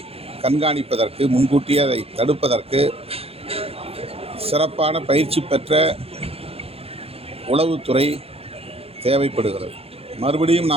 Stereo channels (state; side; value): late; left; 0.29 ms